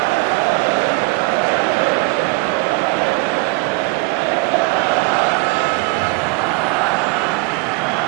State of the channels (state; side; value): quieter; left; 26.7 dB